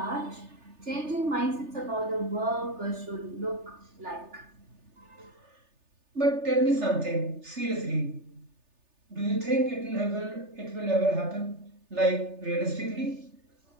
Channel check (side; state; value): left; late; 3.3 ms